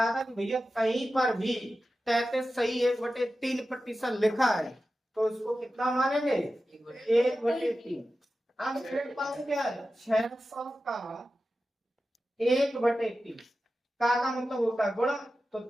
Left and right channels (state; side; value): normal; both; correlation 0.93